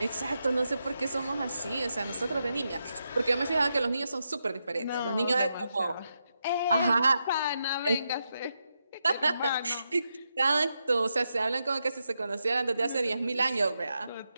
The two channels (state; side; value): inverted; both; correlation -0.85